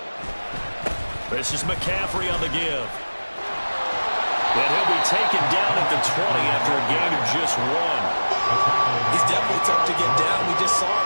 This is McCaffrey on the give. And he'll be taken down at the 20 after a gain of just 1. He's definitely tough to get down. We just saw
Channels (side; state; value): both; inverted; correlation -1.00